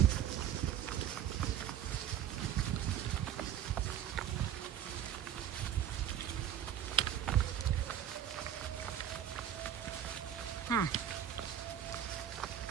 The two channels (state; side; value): quieter; left; 10.2 dB